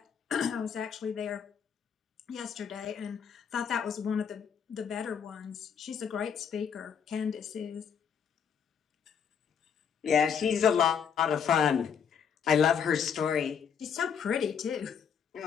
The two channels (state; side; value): quieter; right; 7.3 dB